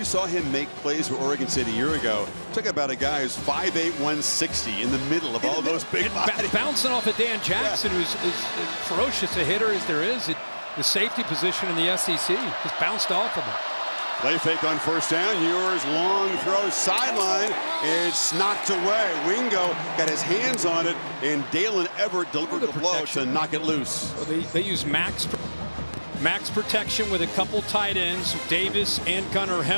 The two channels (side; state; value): both; inverted; correlation -1.00